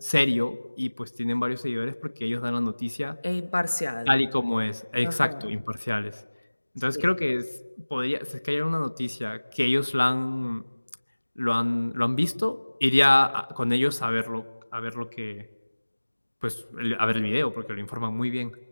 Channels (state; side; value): inverted; both; correlation -1.00